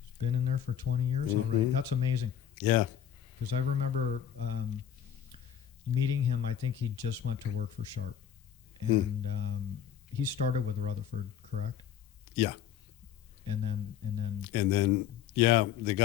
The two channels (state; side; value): quieter; right; 9.4 dB